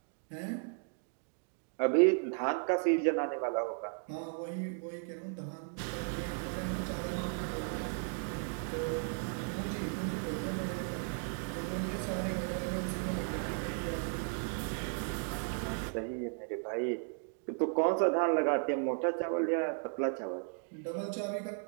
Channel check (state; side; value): silent; left; 54 dB below the other